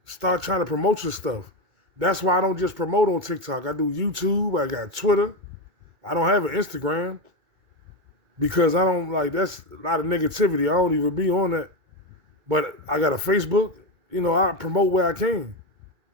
start trying to promote your stuff. That's why I don't just promote on TikTok. I do YouTube. I got Twitter. I don't have an Instagram because I don't that's a lot of negativity. I don't even be on that. But I got a Facebook. I promote where I can.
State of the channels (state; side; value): late; left; 2.3 ms